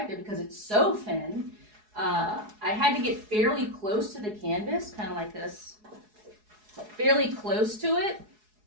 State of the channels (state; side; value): late; left; 4.8 ms